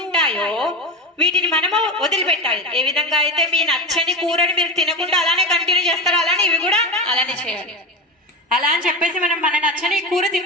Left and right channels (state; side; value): normal; both; correlation 0.22